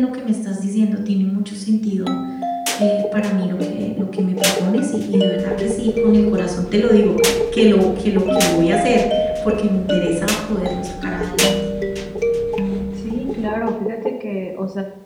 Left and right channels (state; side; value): identical; both; correlation 1.00